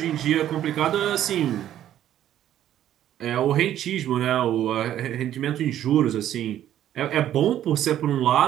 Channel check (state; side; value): quieter; left; 11.6 dB